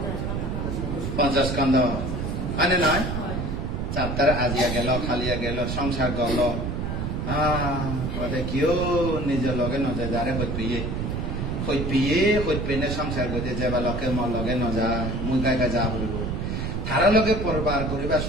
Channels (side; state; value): right; noise; rumble, 2 dB below the sound